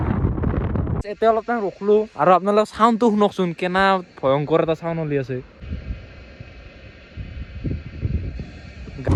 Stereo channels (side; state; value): both; identical; correlation 1.00